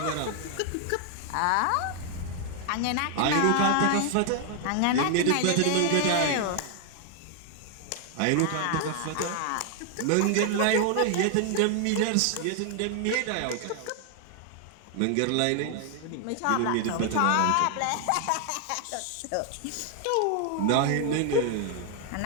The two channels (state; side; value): different; both; correlation 0.00